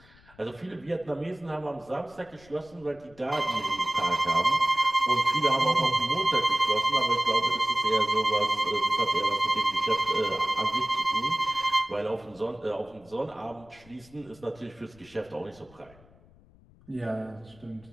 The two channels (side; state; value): left; noise; rumble, 26 dB below the sound